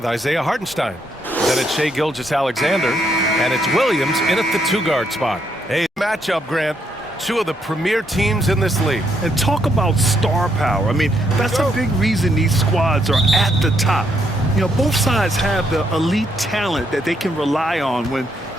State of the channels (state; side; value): normal; both; correlation 0.74